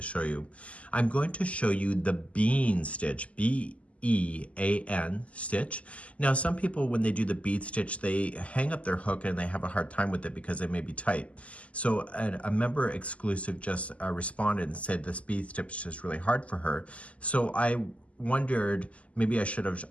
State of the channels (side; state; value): right; late; 0.065 ms